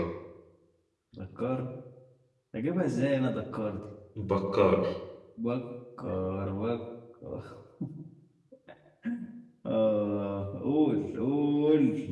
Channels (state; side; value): identical; both; correlation 1.00